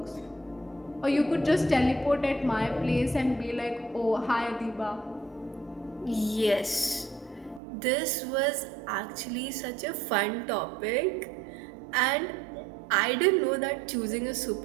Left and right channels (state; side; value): drops out; left; at 7.6 s